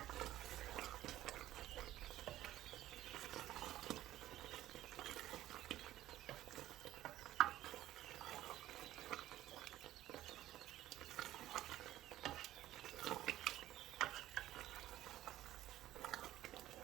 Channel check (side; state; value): left; quieter; 14.1 dB